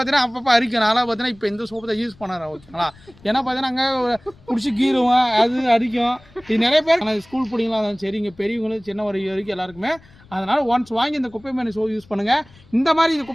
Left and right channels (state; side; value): noise; left; rumble, 26 dB below the sound